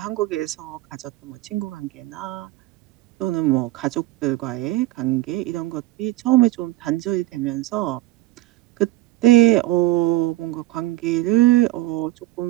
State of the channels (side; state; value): left; quieter; 17.1 dB